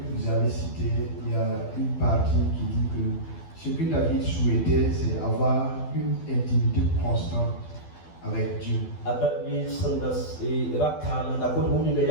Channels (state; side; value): late; right; 12 ms